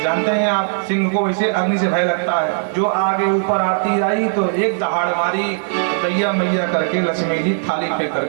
जानते हैं आप, सिंह को इसे अग्नि से भय लगता है। जो आगे ऊपर आरती आई तो एक दहाड़ मारी, दैया मैया करके लक्ष्मी जी थाली पे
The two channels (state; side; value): silent; left; digital silence